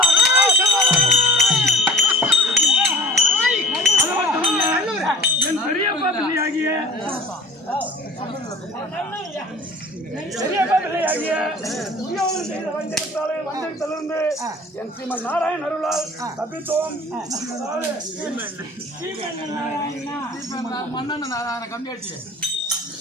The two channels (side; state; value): both; normal; correlation 0.45